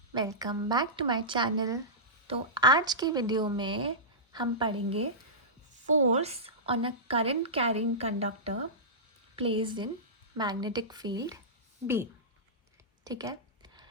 welcome back to my channel. तो आज की वीडियो में हम पढ़ेंगे force on a current carrying conductor placed in magnetic field B. ठीक है,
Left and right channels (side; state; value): both; normal; correlation -0.17